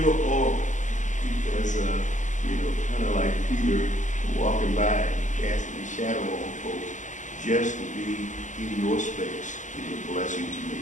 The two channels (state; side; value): late; right; 0.36 ms